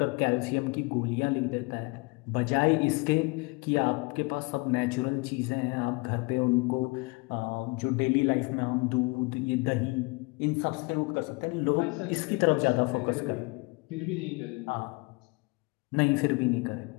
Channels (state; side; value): quieter; right; 28.0 dB